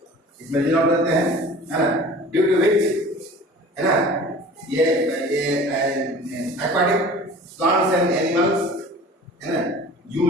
इसमें dissolve रहते हैं है ना, due to which है ना ये aquatic plants and animals है ना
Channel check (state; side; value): normal; both; correlation 0.42